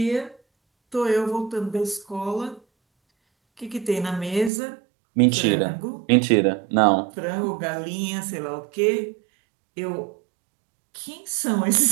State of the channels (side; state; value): left; drops out; at 4.5 s